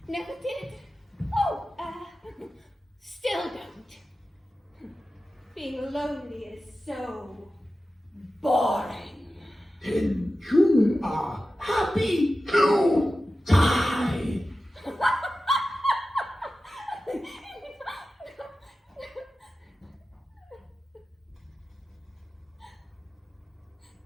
Never did. Oh, still don't. Being lonely is so boring. Then you are happy to die.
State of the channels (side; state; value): both; normal; correlation 0.94